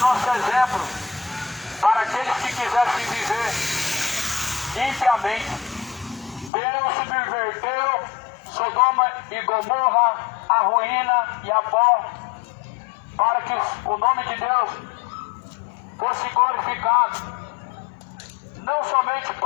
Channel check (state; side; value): drops out; right; at 6.5 s